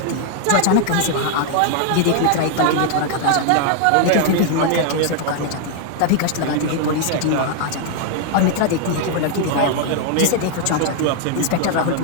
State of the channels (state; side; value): different; both; correlation 0.00